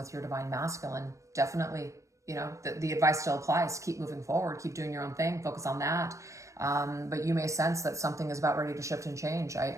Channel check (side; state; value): left; late; 0.15 ms